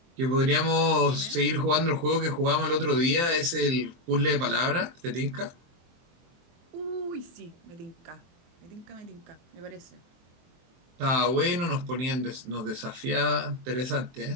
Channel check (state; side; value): late; left; 23 ms